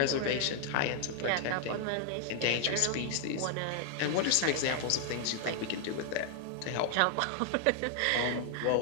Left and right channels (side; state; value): both; different; correlation 0.00